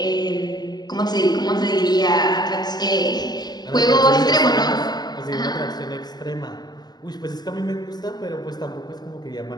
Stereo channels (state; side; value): late; right; 0.20 ms